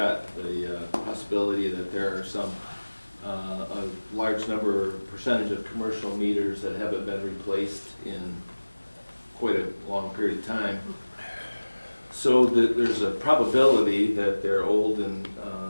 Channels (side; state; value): both; inverted; correlation -1.00